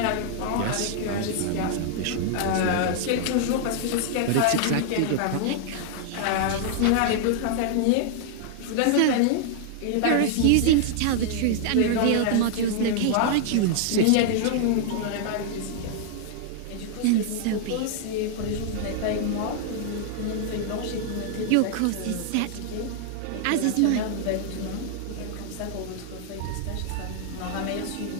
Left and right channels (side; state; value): both; different; correlation -0.01